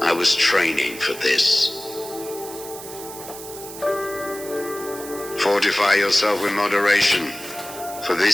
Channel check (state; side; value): noise; right; hiss, 13 dB below the sound